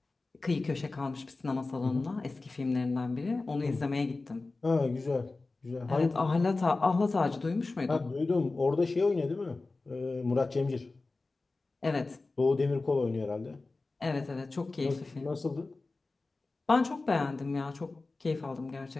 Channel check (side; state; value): right; quieter; 3.5 dB